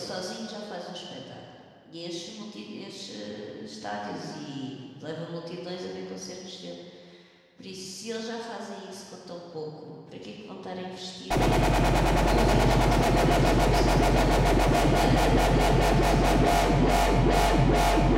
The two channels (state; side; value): identical; both; correlation 1.00